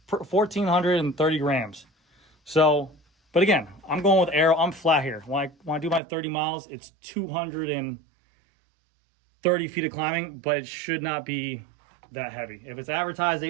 grams. So, but again, I'm going with aero. I'm flat here. When I do my 30 miles, it's 230 feet of climbing, but it should not be that heavy. If it's advertised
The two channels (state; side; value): drops out; left; at 6.0 s